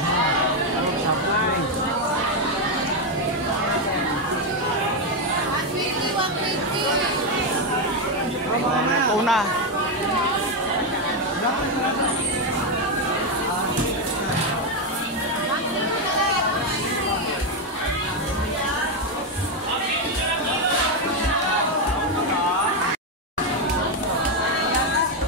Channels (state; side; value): normal; both; correlation 0.06